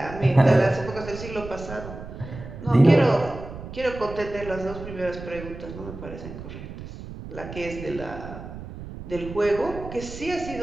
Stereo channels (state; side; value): noise; right; rumble, 12 dB below the sound